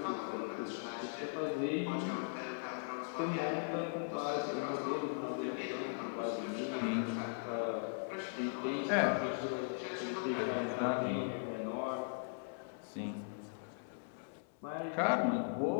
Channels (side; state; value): right; silent; 52 dB below the other